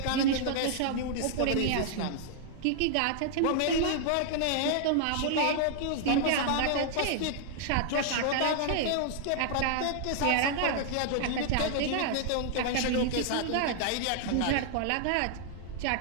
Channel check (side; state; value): both; different; correlation 0.00